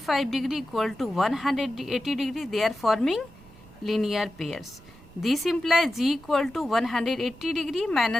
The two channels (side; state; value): right; noise; rumble, 22 dB below the sound